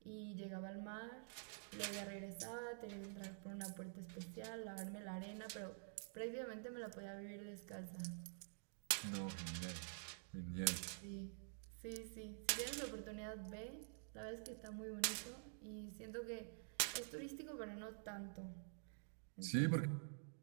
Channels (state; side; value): silent; left; digital silence